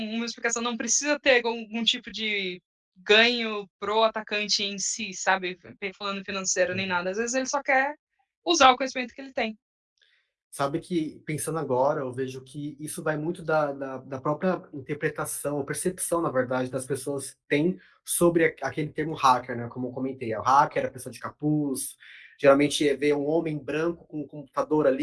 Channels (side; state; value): both; identical; correlation 1.00